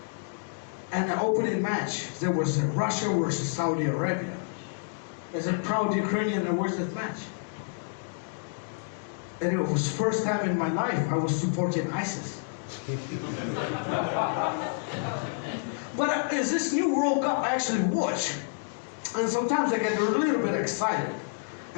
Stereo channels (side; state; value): right; silent; digital silence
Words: And the opening match, there was Russia versus Saudi Arabia. As a proud Ukrainian, I watched that match. And it was the first time in my life I was supporting ISIS. But as this new World Cup I actually watch, and sometimes I get a little bit excited.